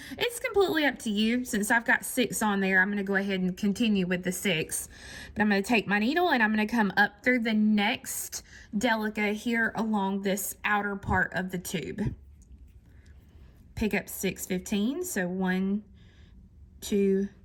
it's completely up to you. Since I've got 6 on there, I'm going to go ahead and continue with the 6. But I'm going to take my needle and I'm going to come up through the next Delica here along this outer part of the tube. Pick up 6 15. So 1, 2,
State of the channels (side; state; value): both; identical; correlation 1.00